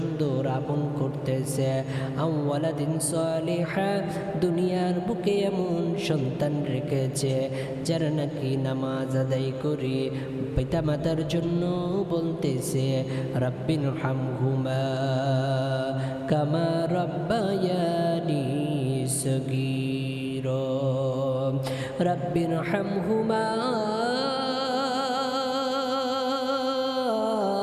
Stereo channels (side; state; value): both; identical; correlation 1.00